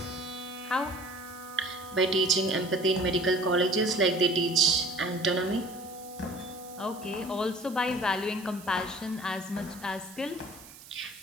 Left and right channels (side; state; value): right; noise; hiss, 19 dB below the sound